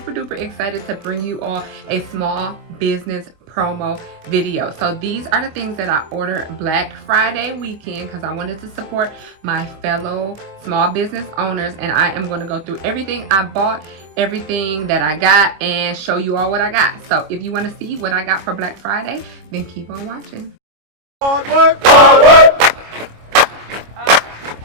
duper excited to bring you all a small business promo video. So these are the things that I ordered Black Friday weekend because I wanted to support my fellow small business owners, and I am going to go through everything I bought, everything that I got, and show you all what I got. So if you want to see what I got for Black Friday, then keep on watching. Hard work, hard work.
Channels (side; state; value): left; late; 25 ms